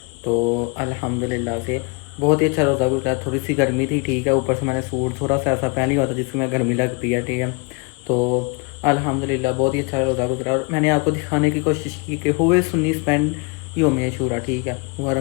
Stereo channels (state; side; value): quieter; right; 31.1 dB